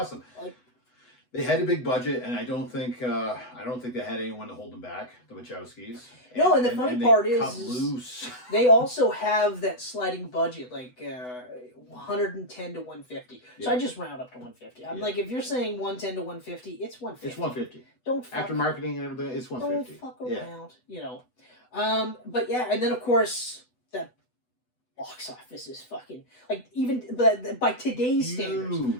Like, they had a big budget, and I don't think they had anyone to hold them back. The Wachowskis. And the funny part is they also have that sliding budget, like 110 to 150. So I just round up to 150. I'm like, if you're saying 110 to 150, it's 150. It's 150. Don't fuck after marketing and everything, it's 150. Don't fuck around, you know. But yeah, and then of course that box office is fucking like, even by today's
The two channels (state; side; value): late; right; 8.0 ms